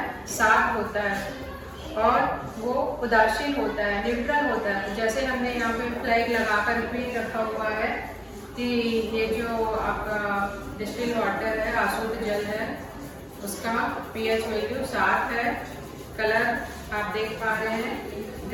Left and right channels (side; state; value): both; identical; correlation 1.00